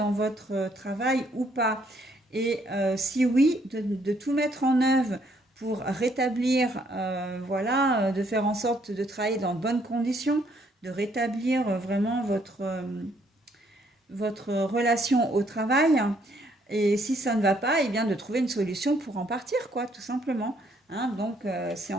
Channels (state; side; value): normal; both; correlation 0.68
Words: votre travail ou pas. Et si oui, de tout mettre en œuvre pour rétablir, de faire en sorte de travailler dans de bonnes conditions, de rétablir vraiment votre relation au travail. Et si ça ne va pas, eh bien de trouver une solution pour en partir, quoi, tout simplement. hein. Donc, c'est